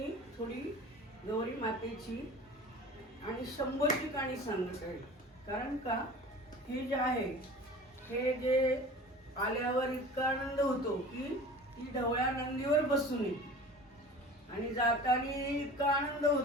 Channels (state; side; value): normal; both; correlation 0.39